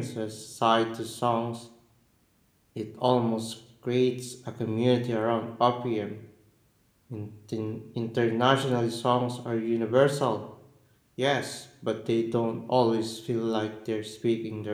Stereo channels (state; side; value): identical; both; correlation 1.00